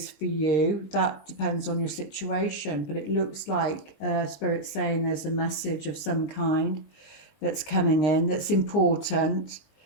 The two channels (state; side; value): late; right; 20 ms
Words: for you, that depends on your situation. But it looks like Spirit's saying there's a message of some kind that's coming in that's important.